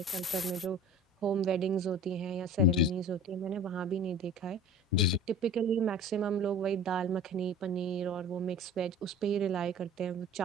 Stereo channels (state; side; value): normal; both; correlation 0.41